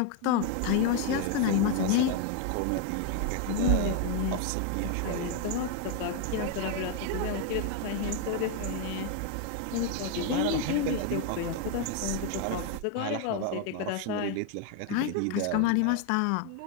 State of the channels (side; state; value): both; different; correlation 0.01